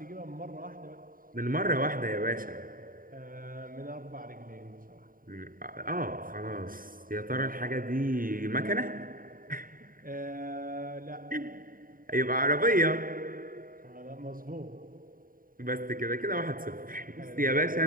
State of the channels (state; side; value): late; left; 0.41 ms